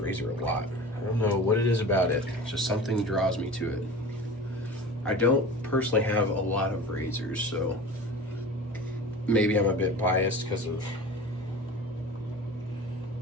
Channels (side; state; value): both; normal; correlation 0.36